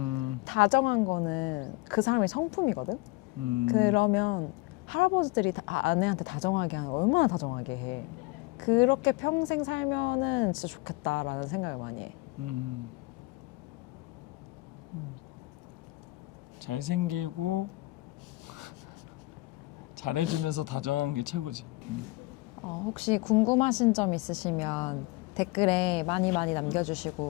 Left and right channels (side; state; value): right; quieter; 22.2 dB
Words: 다정한 거는 그 사람의 성품이거든? 그러면 할아버지들이 아내한테 다정하게 하면 얼마나 다정하게 해. 그렇게 평생 살면은 진짜 좋겠다라는 생각을 많이 해. 잘생기고 잘해주면서 다정한 게 최고지. 혹시 궁금하신 점 있으시면 댓글에 많이